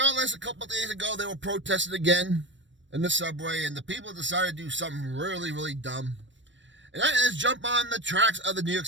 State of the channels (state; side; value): late; left; 0.54 ms